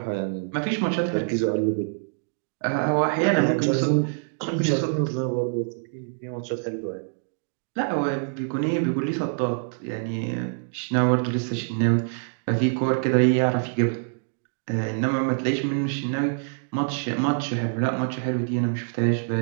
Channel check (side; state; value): left; silent; digital silence